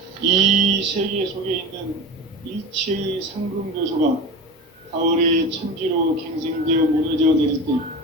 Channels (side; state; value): both; normal; correlation 0.28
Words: 이 세계 속에 있는 일체의 상금교소가 가을의 천지로 갱생되어 무너져 내릴 때